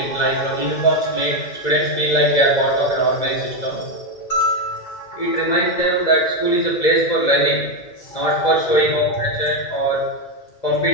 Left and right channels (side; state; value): right; late; 2.0 ms